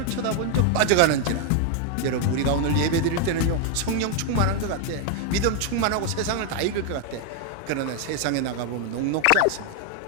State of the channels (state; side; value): different; both; correlation 0.01